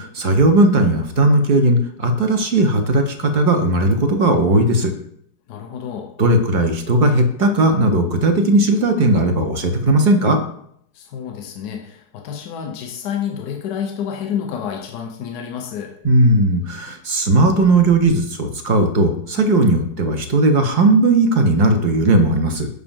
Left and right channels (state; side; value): late; right; 4.7 ms